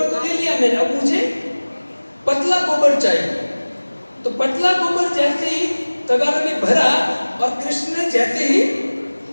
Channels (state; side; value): inverted; both; correlation -1.00